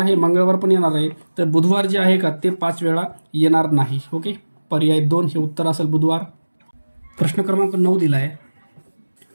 मंगळवार पण येणार आहे, तर बुधवार जे आहे का ते 5 वेळा येणार नाही. ओके, पर्याय 2 हे उत्तर असेल बुधवार. प्रश्न क्रमांक 9 दिला आहे.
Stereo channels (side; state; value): both; inverted; correlation -1.00